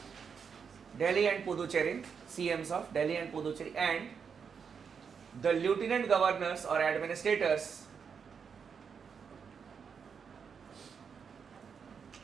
CMs of Delhi and Puducherry, and the lieutenant governors or administrators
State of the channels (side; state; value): left; quieter; 6.5 dB